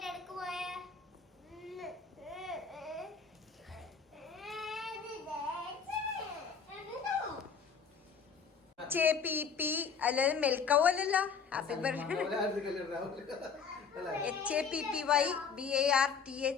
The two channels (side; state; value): right; quieter; 6.0 dB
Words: ഇടക്ക് പോയ അല്ലാതെ മെൽക്കവോ അല്ലല്ലോ. Happy birthday.